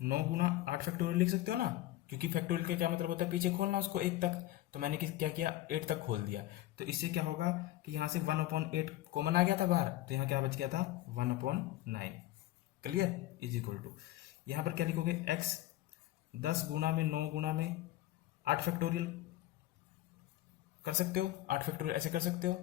गुना 8 फैक्टोरियल लिख सकते हो ना, क्योंकि फैक्टोरियल का क्या मतलब होता है, पीछे खोलना उसको 1 तक, तो मैंने क्या किया, 8 तक खोल दिया। तो इससे क्या होगा कि यहां से 1/8 कॉमन आ गया था बाहर, तो यहां क्या बच गया था, 1/9, क्लियर, इज इक्वल टू, यहां पर क्या लिखोगे, x 10 गुना में 9 गुना में 8 फैक्टोरियल कर सकते हो, 8 फैक्टोरियल ऐसे कर सकते हो,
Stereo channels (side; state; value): right; quieter; 15.6 dB